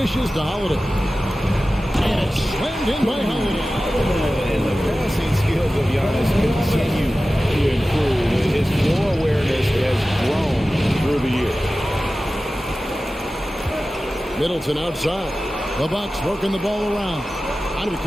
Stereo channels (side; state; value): both; normal; correlation 0.95